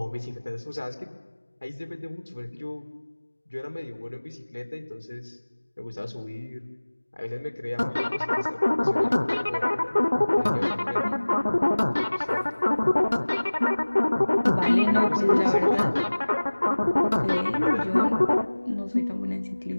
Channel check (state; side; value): inverted; both; correlation -1.00